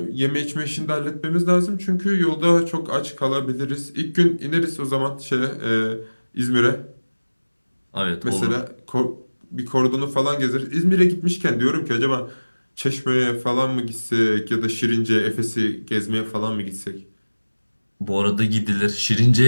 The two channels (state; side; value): inverted; both; correlation -1.00